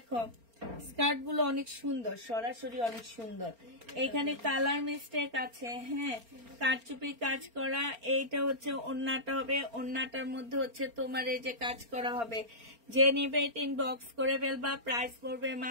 স্কার্ট গুলো অনেক সুন্দর, সরাসরি অনেক সুন্দর। এখানে কালার মিস্টেক আছে। হ্যাঁ, কারচুপি কাজ করা। এইটা হচ্ছে ওড়নাটা হবে, ওড়নাটার মধ্যে হচ্ছে তোমার এই যে কাজ করা হবে। যে নিবে এটা ইনবক্স করে ফেলবা, প্রাইস পড়বে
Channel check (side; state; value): left; late; 4.3 ms